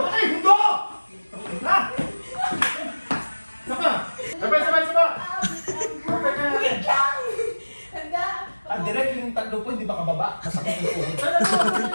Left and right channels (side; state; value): both; inverted; correlation -1.00